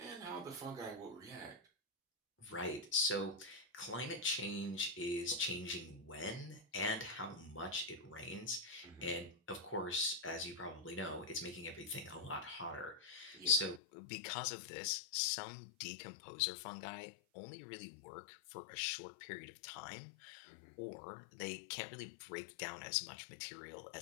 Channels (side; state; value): right; drops out; at 13.8 s